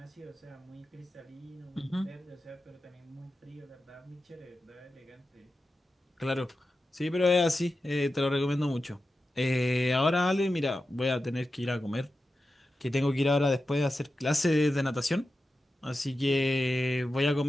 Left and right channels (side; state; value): both; normal; correlation 0.92